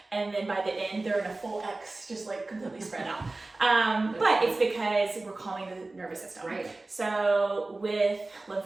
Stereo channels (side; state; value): left; quieter; 3.1 dB